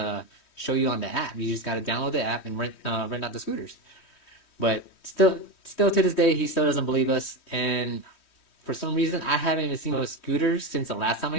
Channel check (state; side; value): late; right; 3.1 ms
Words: show you on the app. You just got to download the app and rent out the scooters. But still to this day, he still doesn't believe us. And for some reason, I haven't even seen those scooters since the last time I